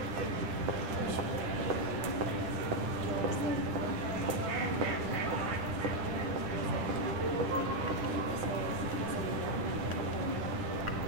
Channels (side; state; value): left; late; 10 ms